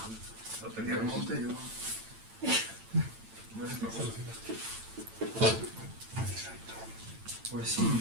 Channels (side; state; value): left; late; 8.9 ms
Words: La lotería del monte, yo no sé cómo. Pues sí,